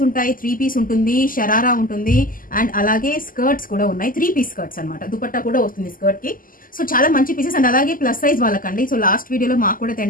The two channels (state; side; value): late; right; 0.41 ms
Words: ఉంటాయి, 3 పీస్ ఉంటుంది, షరారా ఉంటుంది అండ్ అలాగే స్కర్ట్స్ కూడా ఉన్నాయి. 3 పీస్ స్కర్ట్స్ అనమాట, దుపట్టా కూడా వస్తుంది స్కర్ట్ కి. సో చాలా మంచి పీసెస్ అండ్ అలాగే ప్లస్ సైజ్ వాళ్ళకండి. సో లాస్ట్ వీడియోలో మాకు కూడా